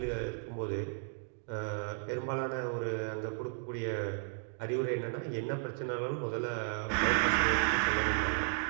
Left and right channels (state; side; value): silent; left; 55 dB below the other